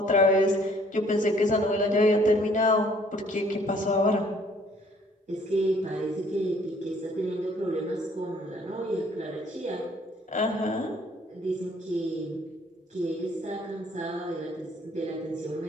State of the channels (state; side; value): normal; both; correlation 0.60